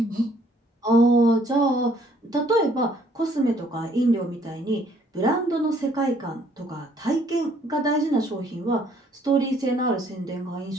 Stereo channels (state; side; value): normal; both; correlation 0.63